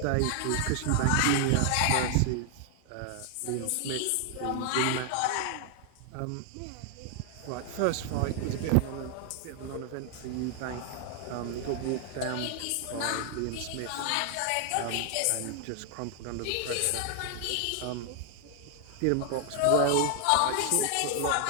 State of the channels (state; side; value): different; both; correlation 0.00